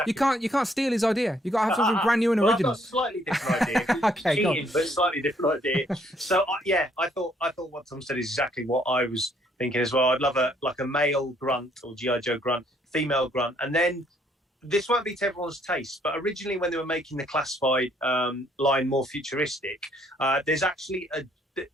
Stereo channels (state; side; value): normal; both; correlation 0.66